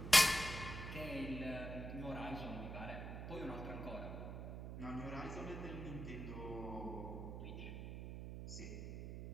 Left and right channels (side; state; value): right; noise; hum, 7 dB below the sound